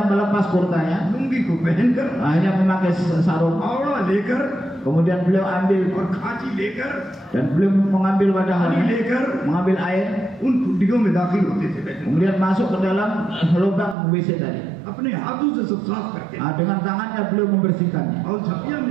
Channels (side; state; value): left; drops out; at 14.0 s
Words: melepas kurtanya, lungi को पहनकर, hanya memakai sarung. आवड़ा लेकर Kemudian beliau ambil और खांची लेकर, dan beliau mengambil पानी wadahnya, लेकर mengambil air, उन खुड्डियों में दाखिल होते थे Betul, kemudian masuk ke dalam lubang WC tadi. अपने हाथों से सब साफ करते Nah, dengan tangannya beliau membersihkannya. और झपिया में